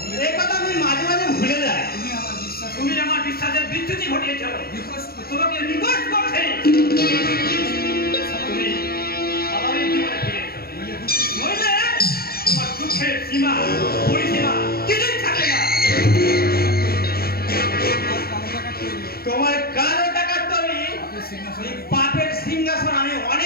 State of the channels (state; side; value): late; right; 0.44 ms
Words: এই কথা আমি মাঝে মাঝে ভুলে যাই। তুমি আমার বিশ্বাসের বিচ্যুতি ঘটিয়েছ, তোমাকে রিকোয়েস্ট করছি তুমি স্বাভাবিক জীবনে ফিরে এসো, নইলে তোমার দুঃখের সীমা পরিসীমা কিছুই থাকে না। তোমার কালো টাকার তৈরি এই পাপের সিংহাসন আমি